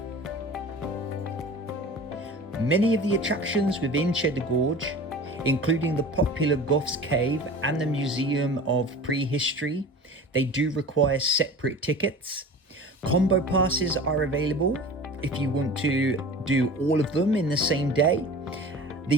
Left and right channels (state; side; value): normal; both; correlation 0.38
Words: Many of the attractions within Cheddar Gorge, including the popular Gough's Cave and the Museum of Prehistory, they do require separate tickets. Combo passes are available if you want to do all of them in the same day. The